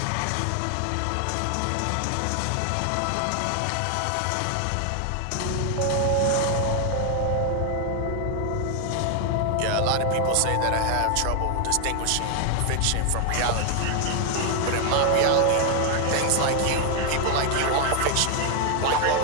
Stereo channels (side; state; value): both; different; correlation 0.00